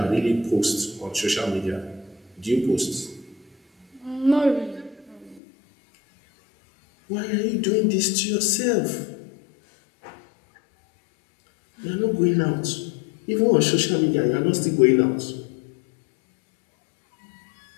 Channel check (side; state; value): right; drops out; at 5.4 s